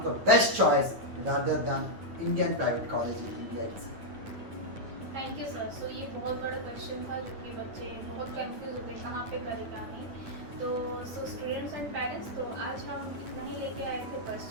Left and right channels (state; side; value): late; left; 9.5 ms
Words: the best choice rather than Indian private college in India. Thank you sir. So ये बहुत बड़ा क्वेश्चन था जो कि बच्चे बहुत कंफ्यूज होते हैं कहाँ पे करेगा नहीं, तो सो स्टूडेंट्स एंड पेरेंट्स, तो आज हम इतना ही लेके आए थे